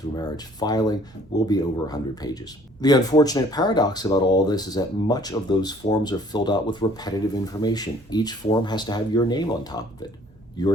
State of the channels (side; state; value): both; normal; correlation 0.56